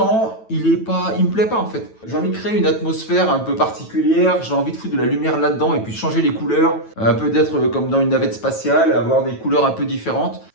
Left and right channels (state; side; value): late; right; 9.1 ms